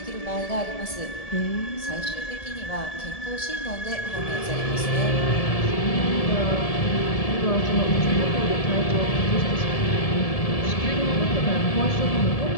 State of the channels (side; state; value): right; late; 1.7 ms